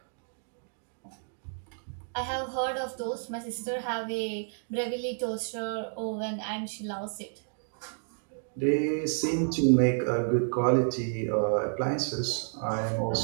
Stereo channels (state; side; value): silent; left; digital silence